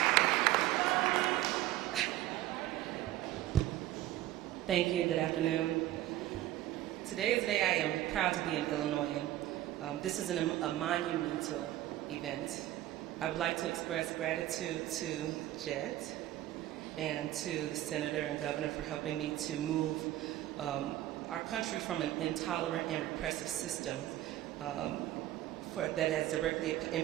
Thank you. Good afternoon. Today is the day I am proud to be an Illinoisan. This is a monumental event. I would like to express gratitude to Jet and to the Senator and Governor for helping me to move our country from an intolerant and repressive system that has directly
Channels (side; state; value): left; quieter; 14.4 dB